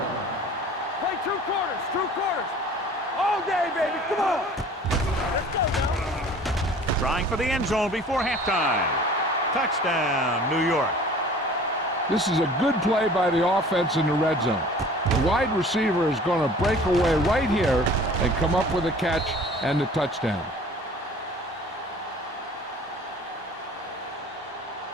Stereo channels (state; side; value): normal; both; correlation 0.47